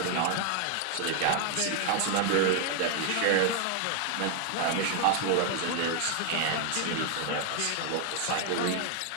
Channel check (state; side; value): different; both; correlation 0.00